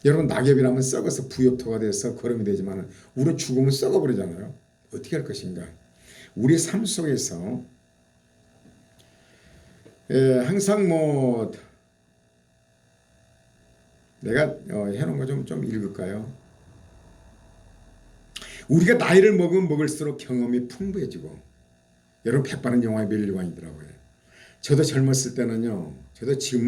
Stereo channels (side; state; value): both; identical; correlation 1.00